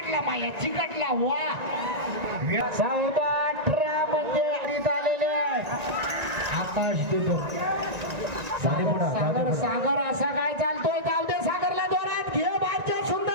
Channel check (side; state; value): left; late; 1.9 ms